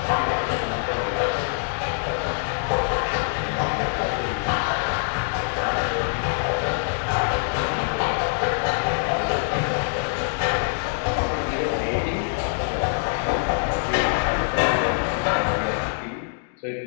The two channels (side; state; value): right; silent; digital silence